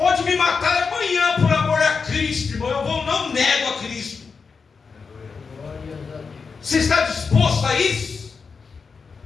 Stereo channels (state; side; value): quieter; right; 5.2 dB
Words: me matar amanhã por amor a Cristo, irmão. Eu não nego a Cristo. Você está disposto a isso?